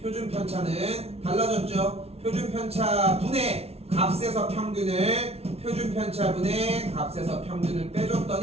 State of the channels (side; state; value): left; late; 0.30 ms